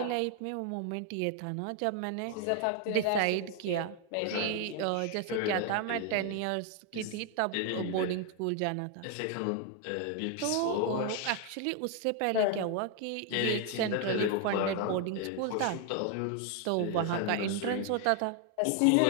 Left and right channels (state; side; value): different; both; correlation 0.00